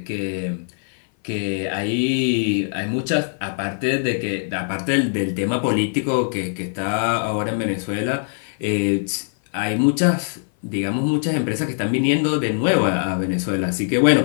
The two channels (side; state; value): right; silent; 57 dB below the other